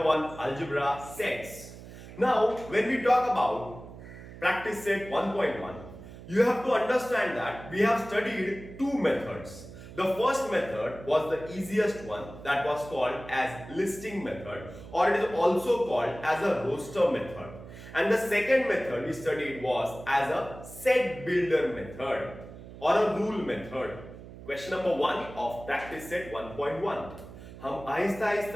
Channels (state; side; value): noise; right; hum, 15 dB below the sound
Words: 1 algebra sets. Now, when we talk about practice set 1.1, you have to understand that we have studied two methods. The first method was the easiest one, that was called as listing method, or it is also called as a roster method. And the second method we studied was as a set builder method or a rule method. Question number 1 of practice set 1.1 हम आहिस्ता